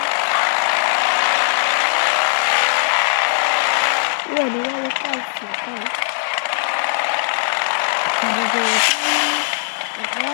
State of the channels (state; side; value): silent; right; digital silence